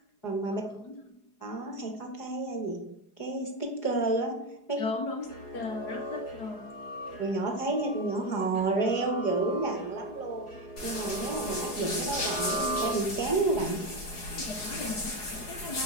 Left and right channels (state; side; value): late; right; 4.8 ms